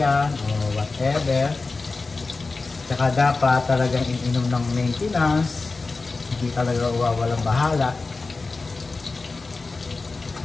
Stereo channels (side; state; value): right; quieter; 3.8 dB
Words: o whatever. Saka dapat talagang ininom ng maintenance, hindi talaga walang bahala.